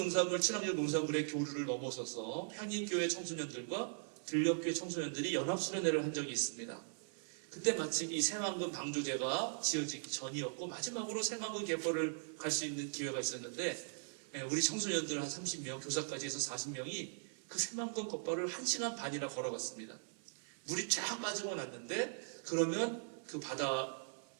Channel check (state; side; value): silent; left; 51 dB below the other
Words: 친환경 농산물의 교류를 넘어서서 향림교회 청소년들과 들녘교회 청소년들이 연합수련회를 한 적이 있습니다. 그때 마침 이 새만금 방조제가 지어지기 전이었고 마지막으로 새만금 갯벌을 갈 수 있는 기회가 있었는데 우리 청소년들 한 30명, 교사까지 해서 40명이 그 새만금 갯벌을 1시간 반이나 걸어갔습니다. 물이 쫙 빠지고 났는데 그러면 그